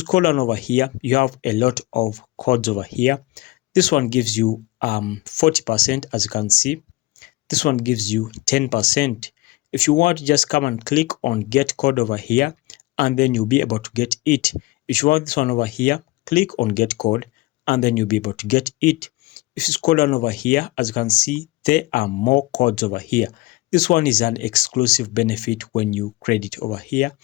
scroll down over here, you have a lot of codes over here. This one gives you 40%, as you can see. This one gives you 10%. If you want, just come and click on get code over here, and then you'll be able to get it. If you want this one over here, click on get code, and then you'll be able to get it. If you scroll down over here, as you can see, there are more codes over here. This one is an exclusive benefit when you credit over here.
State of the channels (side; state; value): right; quieter; 21.1 dB